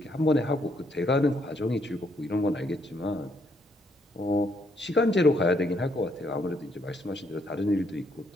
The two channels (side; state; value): both; normal; correlation 0.72